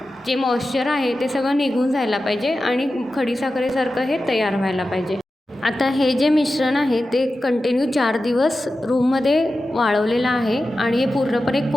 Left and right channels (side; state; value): both; normal; correlation 0.93